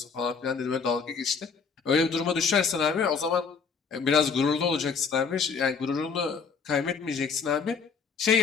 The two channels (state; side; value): quieter; right; 5.6 dB